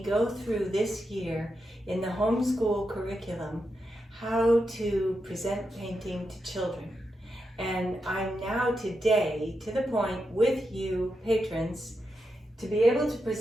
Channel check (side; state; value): both; normal; correlation 0.86